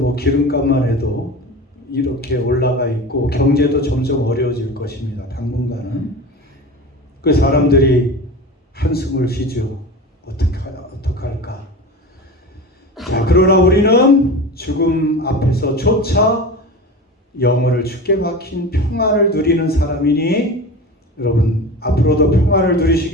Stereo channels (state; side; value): normal; both; correlation 0.30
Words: 기름값만 해도 이렇게 올라가 있고 경제도 점점 어려워질 것입니다. 당분간은. 그 사람들이 한숨을 쉬죠. 어떡할까. 자, 그러나 우리는 죽음 앞에서조차 영혼을 주께 박힌 평안을 누리는 사람이니 여러분, 앞으로도 평안을